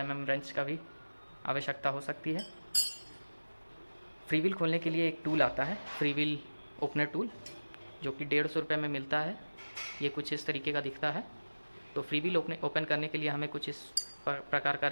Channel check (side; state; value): both; inverted; correlation -1.00